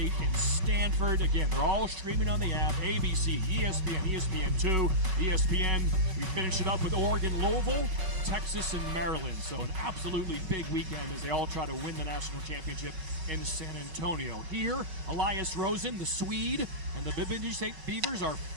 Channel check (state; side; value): late; left; 5.3 ms